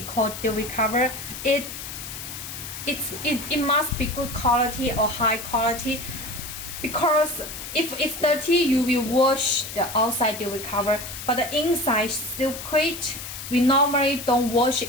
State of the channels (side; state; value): left; noise; hiss, 9 dB below the sound